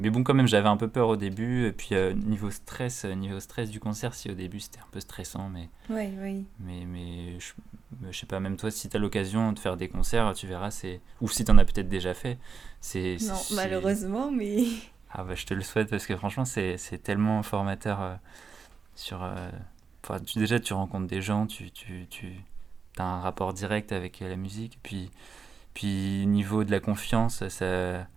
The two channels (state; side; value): quieter; left; 5.5 dB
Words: bon, quand même, j'avais un peu peur au début. Et puis, niveau stress du concert, si au début c'était un peu stressant, mais, Ouais, oui. mais, mais je sais pas, même toi, si tu as l'occasion de faire des concerts, tu verras, ou si tu en as peut-être déjà fait, c'est. c'est, Non, c'est- malheureusement, mais. Ah bah, je te le souhaite parce que franchement, c'est tellement formateur sur. Enfin, déjà, tu rencontres des gens, tu as un rapport direct avec la musique. Puis niveau de la confiance,